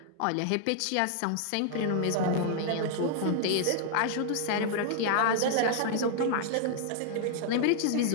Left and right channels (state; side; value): different; both; correlation -0.01